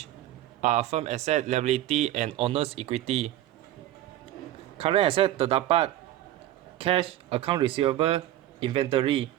are firm asset, liability and owner's equity. Current asset terdapat cash, account receivable, inventory.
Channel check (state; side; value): quieter; left; 13.7 dB